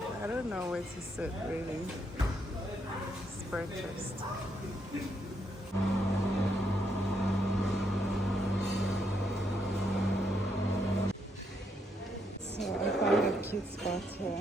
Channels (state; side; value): normal; both; correlation 0.76